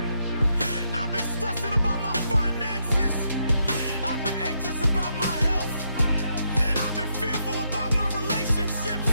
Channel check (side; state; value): both; inverted; correlation -0.79